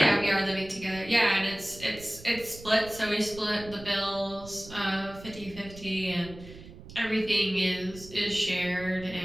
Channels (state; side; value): noise; right; rumble, 17 dB below the sound